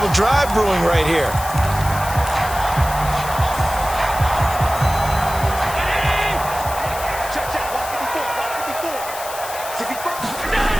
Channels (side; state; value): left; noise; hiss, 11 dB below the sound